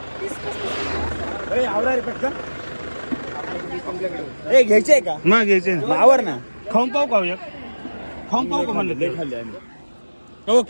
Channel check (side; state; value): both; inverted; correlation -1.00